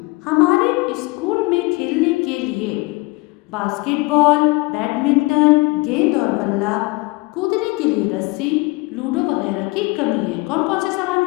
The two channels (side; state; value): right; quieter; 24.3 dB